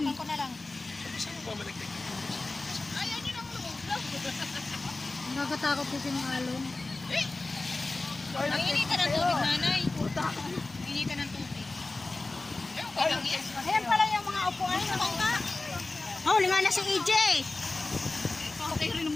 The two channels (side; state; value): right; quieter; 3.2 dB